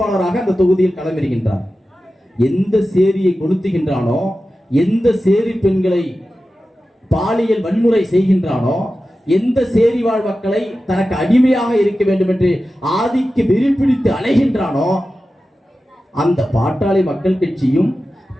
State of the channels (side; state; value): both; normal; correlation 0.93